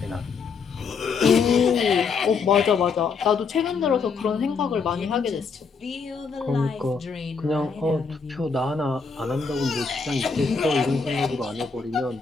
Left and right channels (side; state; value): right; quieter; 5.2 dB